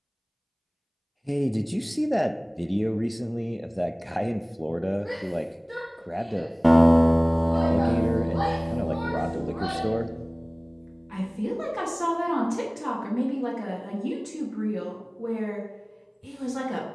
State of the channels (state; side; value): identical; both; correlation 1.00